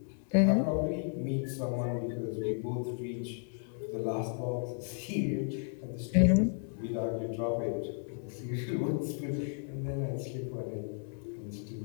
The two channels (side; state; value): right; silent; 55 dB below the other